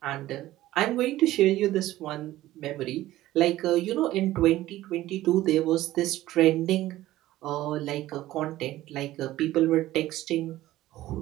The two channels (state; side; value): quieter; left; 15.5 dB